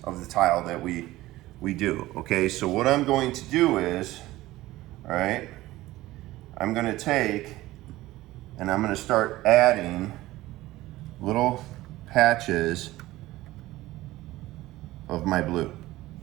of the tile that we do, okay? So what I'm going to do is, all right, I'm going to take and I'm going to start adding little patches of my blue,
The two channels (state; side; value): quieter; left; 17.2 dB